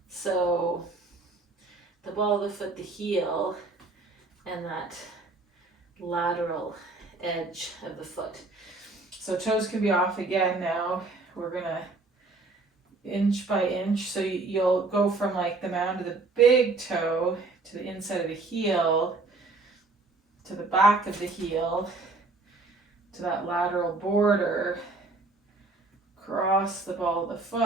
So the ball of the foot, the heel, and that lateral edge of the foot. So toes can be off again now. We're gonna inch by inch. So you'll go from like the mound of the big toe to the inside of the heel, to the back of the heel, to that lateral border, cross the ball of the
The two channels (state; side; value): quieter; left; 3.5 dB